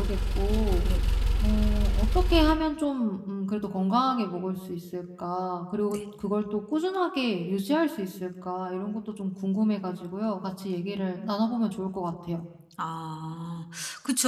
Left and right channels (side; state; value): both; identical; correlation 1.00